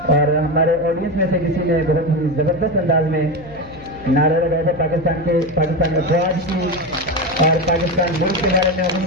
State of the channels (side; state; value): left; noise; hum, 20 dB below the sound